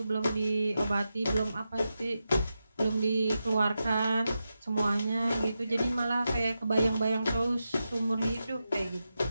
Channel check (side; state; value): both; inverted; correlation -0.89